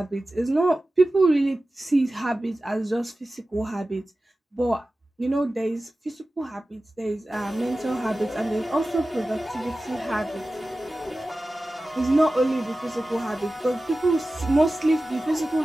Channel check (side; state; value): both; normal; correlation 0.95